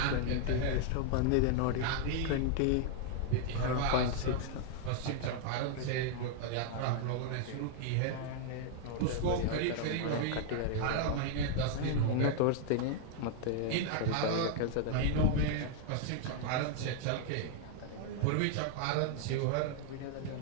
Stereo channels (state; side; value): different; both; correlation 0.00